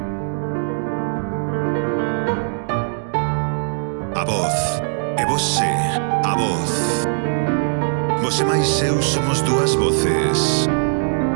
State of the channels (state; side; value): silent; left; digital silence